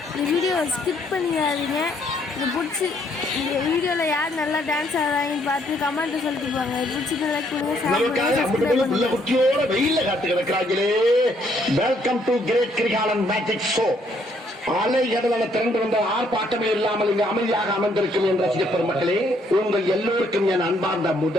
இந்த வீடியோவை ஸ்கிப் பண்ணிடாதீங்க. இது பிடிச்சி இந்த வீடியோவில் யார் நல்லா டான்ஸ் ஆடுறாங்கன்னு பார்த்து கமெண்ட் சொல்லிட்டு போங்க. பிடிச்சி லைக் பண்ணுங்க. குட்டியோட வெயில காத்து கிடக்கிறாங்களே. Welcome to great Kirikalan magic show. அலை கடலான திரண்டு வந்த ஆர்ப்பாட்டமே இல்லாமல் இங்கு அமைதியாக அமர்ந்திருக்கும் என்ற ரசிக பெருமக்களே, உங்கள் எல்லோருக்கும் என் அன்பார்ந்த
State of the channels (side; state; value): both; normal; correlation 0.68